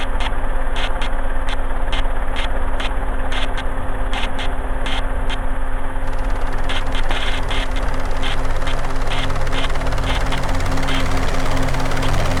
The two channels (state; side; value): identical; both; correlation 1.00